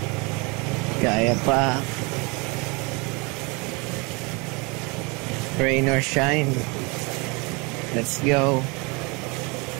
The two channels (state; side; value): quieter; left; 28.8 dB